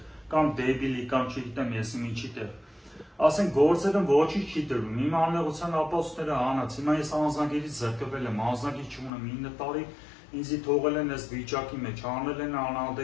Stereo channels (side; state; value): right; drops out; at 9.1 s